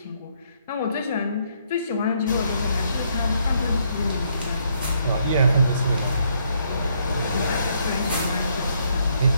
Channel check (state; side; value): inverted; both; correlation -0.72